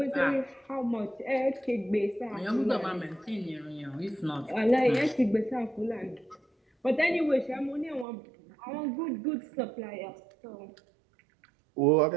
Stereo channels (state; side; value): drops out; left; at 8.1 s